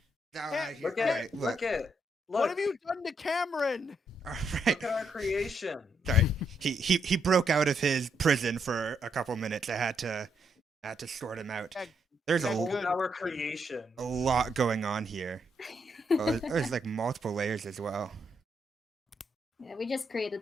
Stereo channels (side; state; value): both; normal; correlation 0.77